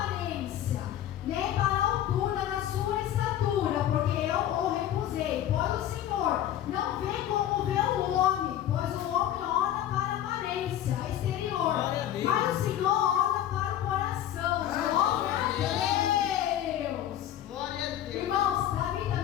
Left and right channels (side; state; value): right; quieter; 11.6 dB